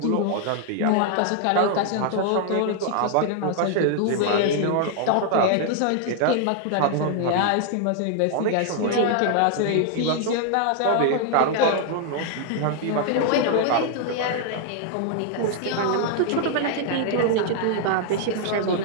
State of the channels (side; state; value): both; different; correlation 0.00